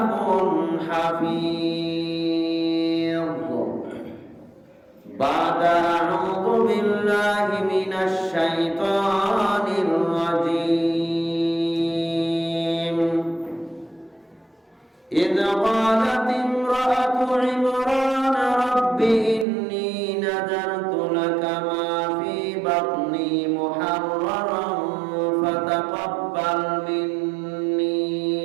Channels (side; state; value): left; drops out; at 19.5 s